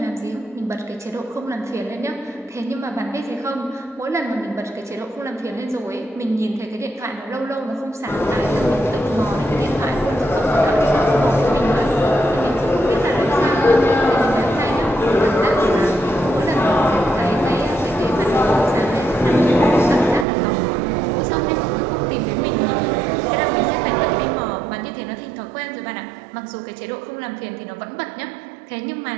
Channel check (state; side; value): drops out; left; at 20.2 s